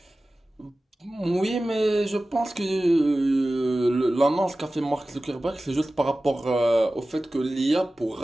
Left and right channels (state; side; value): normal; both; correlation 0.96